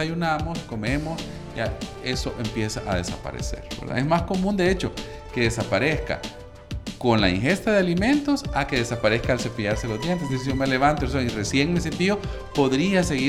comemos, ya eso empieza a desaparecer, ¿verdad? Es más común, de hecho, que desaparezca con la ingesta de alimentos a que desaparezca al cepillarse los dientes. Es decir, si yo me levanto y recién me cepillo, podría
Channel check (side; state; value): both; identical; correlation 1.00